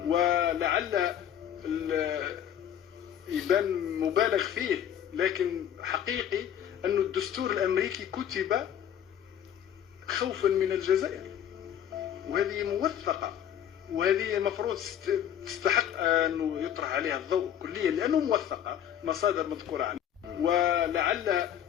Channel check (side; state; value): right; quieter; 9.9 dB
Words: ولعل يبان مبالغ فيه، لكن حقيقي أن الدستور الأمريكي كتب خوفا من الجزائر، وهذه موثقة، وهذه المفروض تستحق أن يطرح عليها الضوء كليا لأنه موثقة، مصادر مذكورة عنها. ولعل